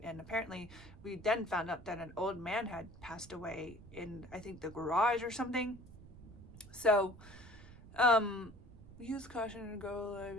And apparently we then found out that an old man had passed away in, I think, the garage or something. So, use caution to go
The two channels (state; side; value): noise; right; rumble, 18 dB below the sound